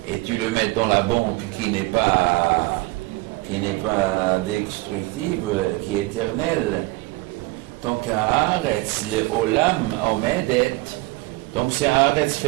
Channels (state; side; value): quieter; left; 21.7 dB